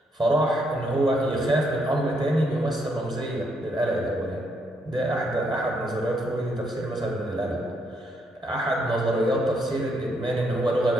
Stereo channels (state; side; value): normal; both; correlation 0.75